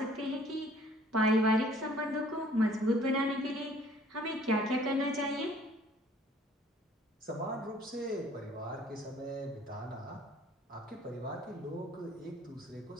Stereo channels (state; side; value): normal; both; correlation 0.56